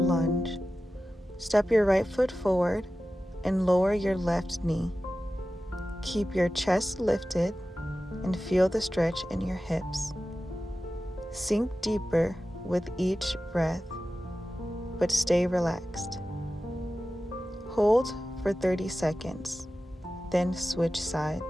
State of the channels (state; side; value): normal; both; correlation 0.94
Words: Step your right foot forward and lower your left knee. Keep your chest lifted and feel the stretch in your hips. Sink deeper with each breath, but stay relaxed. Hold for 30 seconds, then switch